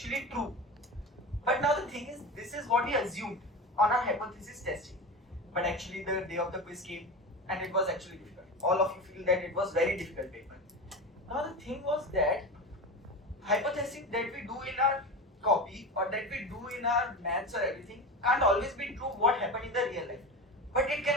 true. But now the thing is, this is what we assumed on our hypothesis testing. But actually the day of the quiz came and it was actually difficult. All of you feel that it was very difficult paper. Now the thing was that hypothesis that we do in our copy or that we do in our maths or everything can't always be true what happened in the real life. But it can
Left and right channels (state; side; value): normal; both; correlation 0.26